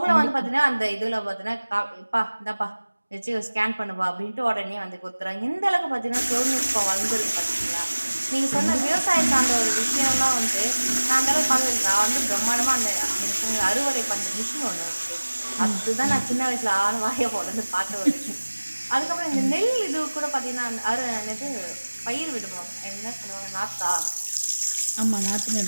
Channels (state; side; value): inverted; both; correlation -1.00